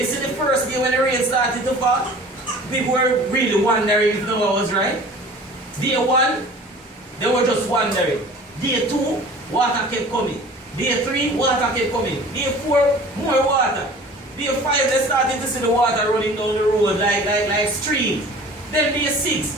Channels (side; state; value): both; normal; correlation 0.45